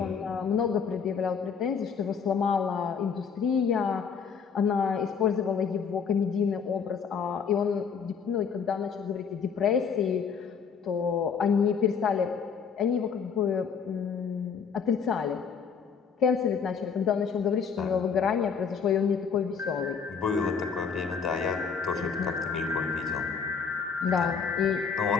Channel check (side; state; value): right; quieter; 6.3 dB